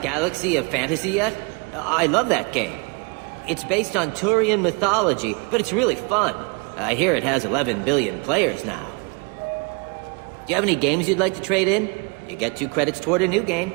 Galaxy of Fantasy yet? I love that game. It's based on Turian mythology, but it's really fun. I hear it has 11 billion players now. Do you have any games you'd like to trade in? You get 2 credits toward a new game.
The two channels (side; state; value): left; quieter; 32.4 dB